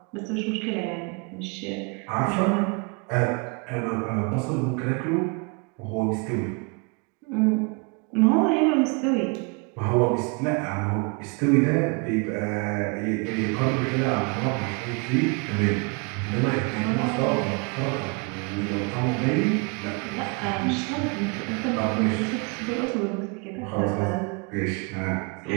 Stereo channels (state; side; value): quieter; left; 32.3 dB